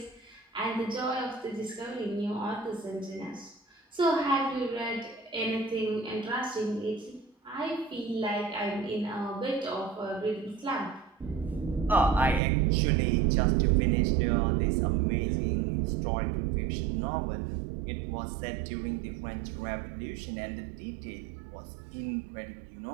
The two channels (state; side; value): drops out; left; at 12.4 s